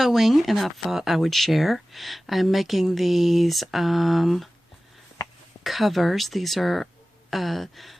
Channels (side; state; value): both; normal; correlation 0.96